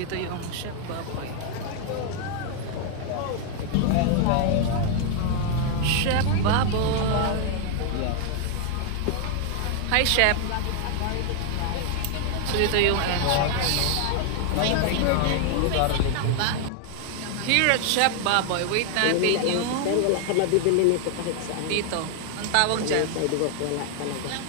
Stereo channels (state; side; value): different; both; correlation 0.00